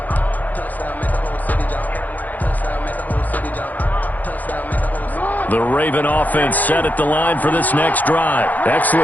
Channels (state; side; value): late; right; 0.082 ms